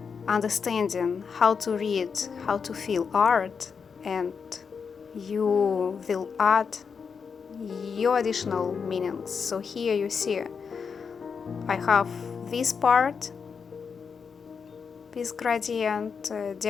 understanding how to read, how to feel art, and you will add your additional meanings. So here you see I have this part, this gradient,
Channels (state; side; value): quieter; right; 6.0 dB